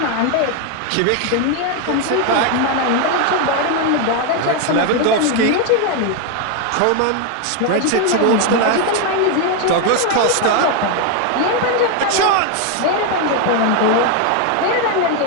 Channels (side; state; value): both; different; correlation 0.01